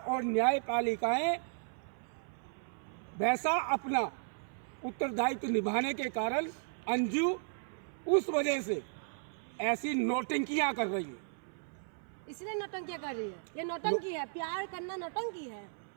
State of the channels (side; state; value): left; silent; 54 dB below the other